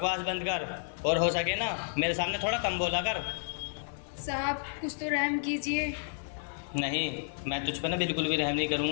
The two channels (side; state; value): right; silent; digital silence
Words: बंद कर और हो सके ना मेरे सामने थोड़ा कम बोला कर। साहब कुछ तो रहम कीजिए। नहीं, मैं तुझ पे ना बिल्कुल भी रहम नहीं